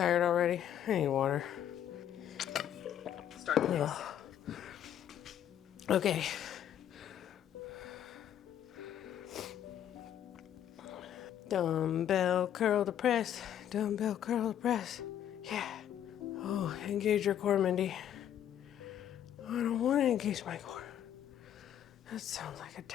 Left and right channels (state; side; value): quieter; right; 10.3 dB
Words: already. I need water. Start the next set. Okay. Dumbbell curl to press. Dumbbell curl to press. Yeah. Oh, engage your core, Mindy. I don't want to engage my core. That sounds like a